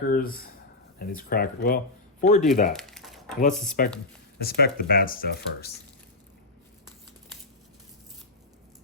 And these crackers. Well, before we do that, let's inspect the bad stuff first.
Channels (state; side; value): quieter; right; 3.0 dB